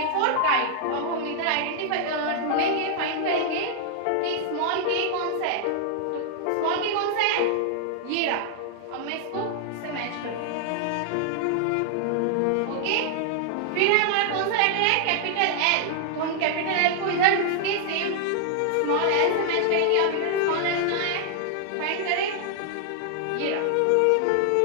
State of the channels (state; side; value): different; both; correlation 0.00